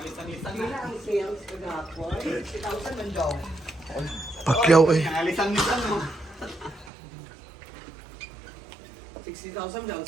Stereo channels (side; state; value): left; drops out; at 6.9 s